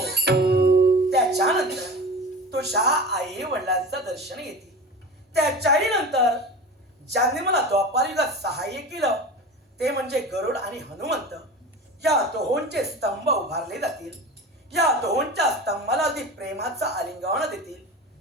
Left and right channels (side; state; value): both; normal; correlation 0.32